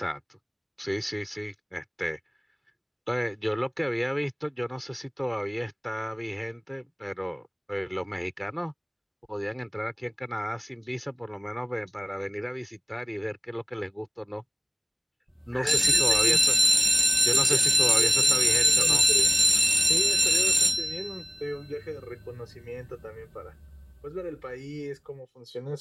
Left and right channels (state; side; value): identical; both; correlation 1.00